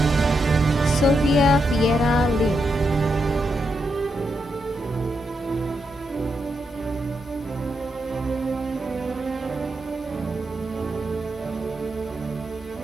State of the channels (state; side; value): normal; both; correlation 0.83